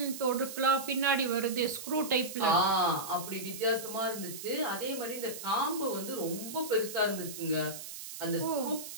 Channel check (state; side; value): noise; right; hiss, 10 dB below the sound